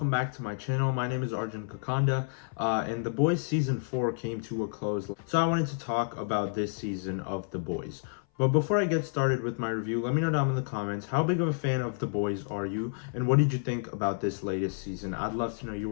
back to my channel. My name is Arjun, and The Boys Season 4 came to a close. So I wanted to talk about this season of The Boys. But before I get started with my review, let me know down in the comments, how big of a fan of The Boys are you? And what did you think about this latest season? I'd love to know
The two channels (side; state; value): right; silent; 58 dB below the other